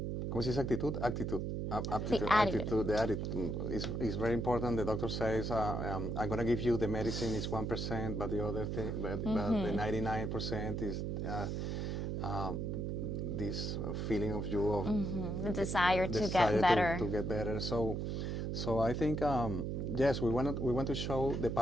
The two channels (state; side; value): noise; right; hum, 2 dB below the sound